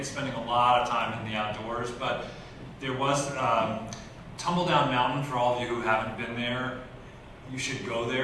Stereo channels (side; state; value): both; identical; correlation 1.00